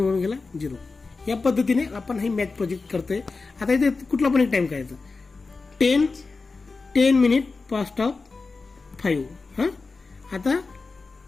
1 गेला 0. या पद्धतीने आपण हे मॅथ प्रोजेक्ट करतोय. आता इथे कुठला पण एक टाइम करायचा. 10 मिनिट पास्ट ऑफ 5. आता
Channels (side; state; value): right; quieter; 4.1 dB